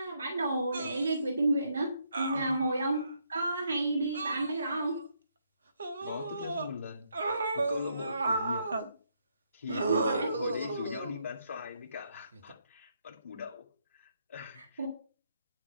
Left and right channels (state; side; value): inverted; both; correlation -0.75